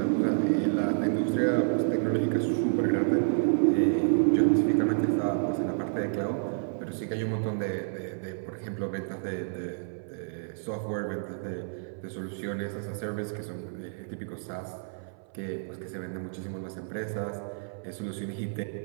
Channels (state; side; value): silent; left; 57 dB below the other